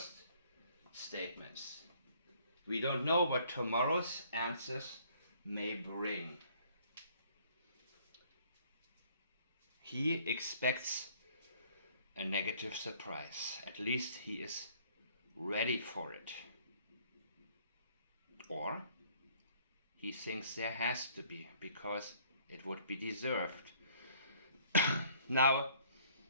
statements. We don't know what tomorrow's answers may bring. He expects a negative surprise. At least he is ready for it. Or he thinks there has to be, because it would be deserved. Now,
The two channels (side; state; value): both; inverted; correlation -0.60